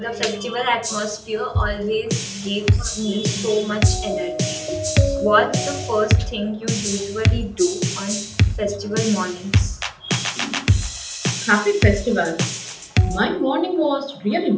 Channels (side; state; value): both; identical; correlation 1.00